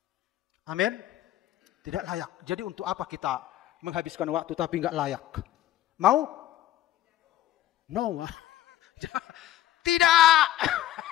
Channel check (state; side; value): quieter; right; 13.6 dB